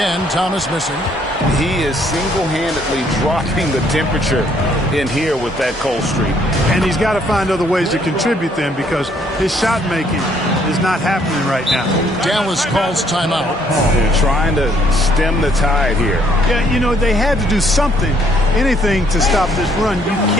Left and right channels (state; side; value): normal; both; correlation 0.66